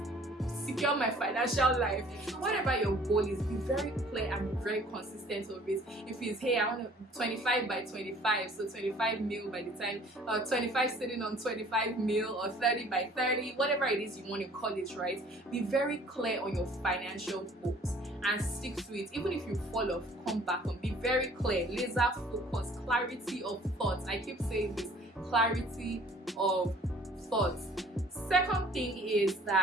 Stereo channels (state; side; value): normal; both; correlation 0.54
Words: secure my financial life. Whatever your goal is, be very clear and be very consistent of it. If it's, hey, I want 25 by 25, so 25 mil by the time, 25 sitting on 25 mil, or 30 by 30, whatever it is you want to call it, right? Be very clear on your financial goals and stick to it. Even if you fall off, come back on. Be very clear, laser focus, clarity of thoughts. I keep saying this, clarity of thoughts. Second thing is